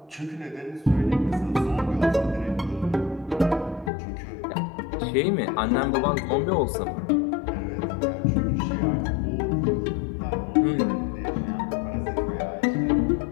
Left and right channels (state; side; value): drops out; right; at 3.9 s